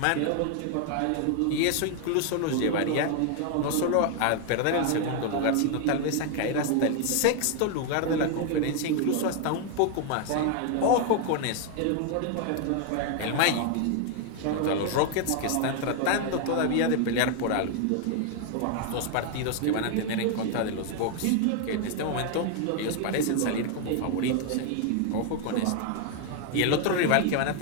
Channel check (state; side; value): different; both; correlation 0.00